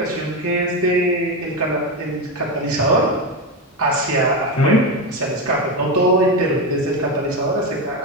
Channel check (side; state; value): both; normal; correlation 0.13